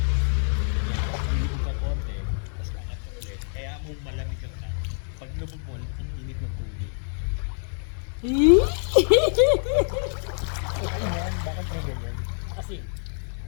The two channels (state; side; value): silent; right; digital silence